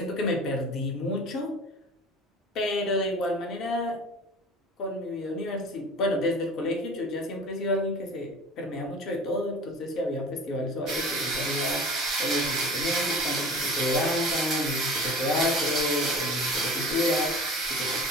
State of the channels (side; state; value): both; normal; correlation 0.40